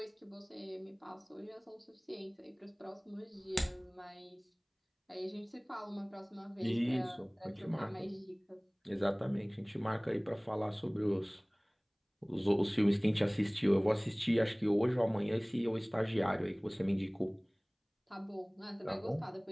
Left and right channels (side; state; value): both; identical; correlation 1.00